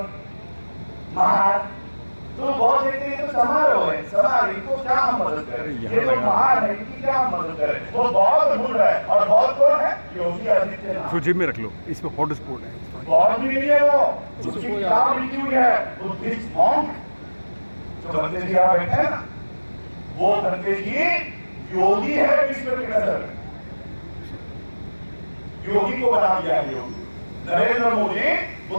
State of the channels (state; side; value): inverted; both; correlation -1.00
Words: महार। तो बहुत देखते हैं तो समारोह है, समारोह, इनको क्या हम मदद करें? ये तो महार है, इनकी क्या हम मदद करें? वो बहुत ढूंढ रहा है। और बहुत कौन है? योगी आदित्यनाथ। इसको जेब में रख लो, इसमें हॉट स्पॉट है। बहुत भी नहीं है वो, उसकी किताब लिखी हुई है बुद्धिस्ट मॉन्क। जो बंदे जी यहाँ बैठे हैं ना, वो बंदे जी योगी है विश्व की नजर में। योगी को बना दिया है Yogi. Narendra Modi